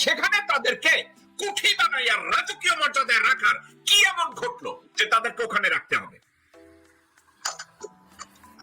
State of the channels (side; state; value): both; identical; correlation 1.00